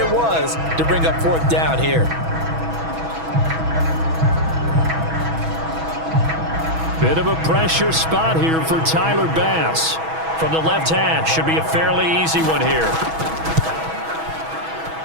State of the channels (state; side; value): late; left; 6.2 ms